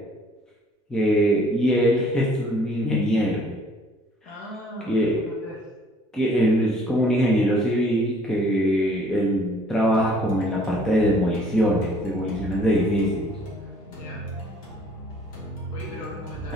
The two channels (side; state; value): both; normal; correlation 0.58